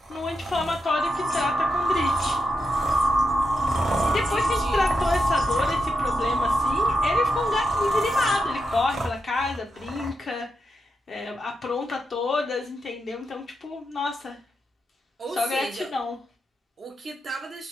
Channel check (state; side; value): normal; both; correlation 0.86